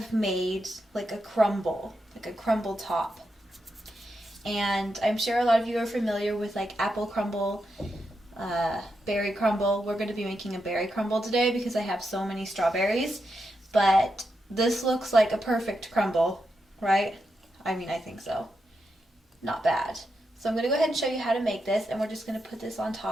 made like a crumble top. And I'm sure a lot of you are familiar with like apple crumble, berry crumble. We're going to be making a berry crumble today because I have so many strawberries, but this looks like a perfect crumble, right? I mean, I think so. Not bad. So I'm going to go ahead and show you how to make this, and we're just going to put this on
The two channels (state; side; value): normal; both; correlation 0.85